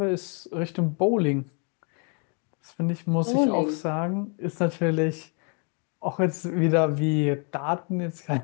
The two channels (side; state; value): right; quieter; 37.8 dB